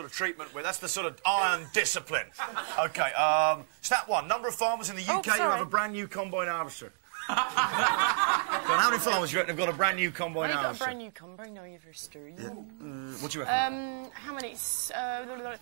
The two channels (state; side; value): silent; left; digital silence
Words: of treatment that's the sort of iron discipline. OK, stat 1. Number of farmers in the UK who have a brand new combine harvester. How many farmers do you reckon have got a brand new combine harvester? I've got a brand new combine harvester. Yeah. What do you reckon? How many?